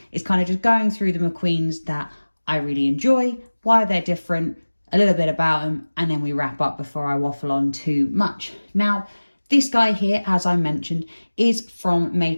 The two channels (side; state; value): both; inverted; correlation -1.00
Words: is kind of just going through the McQueens that I really enjoy, why they're different, a little bit about them, and then we wrap up before I waffle on too much. Now, this guy here, as I mentioned, is from